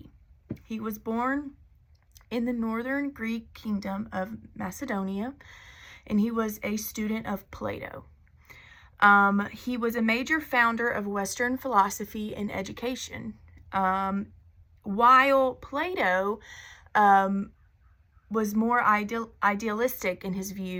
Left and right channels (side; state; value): both; identical; correlation 1.00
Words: He was born in the northern Greek kingdom of Macedonia, and he was a student of Plato. He was a major founder of Western philosophy and education. While Plato was more idealistic in his